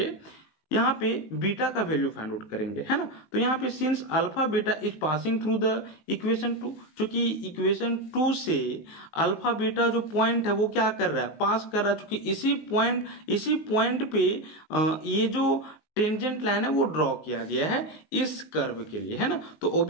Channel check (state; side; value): late; right; 19 ms